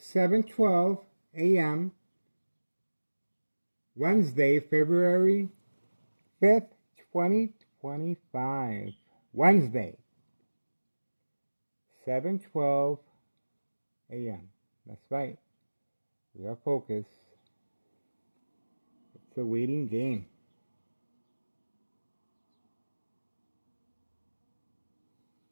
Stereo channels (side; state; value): both; inverted; correlation -1.00